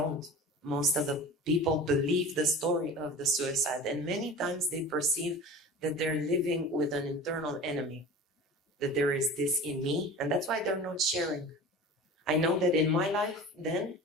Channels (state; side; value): normal; both; correlation 0.36